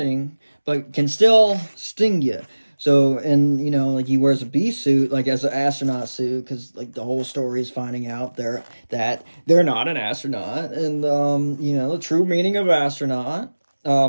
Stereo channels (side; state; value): both; inverted; correlation -1.00